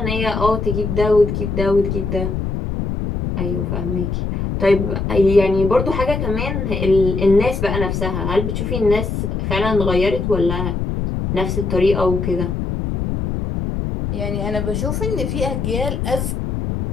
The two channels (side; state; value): left; noise; rumble, 2 dB below the sound